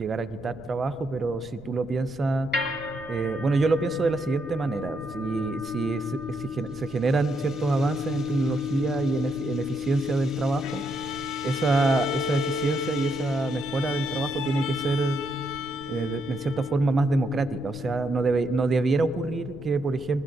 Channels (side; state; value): right; noise; rumble, 19 dB below the sound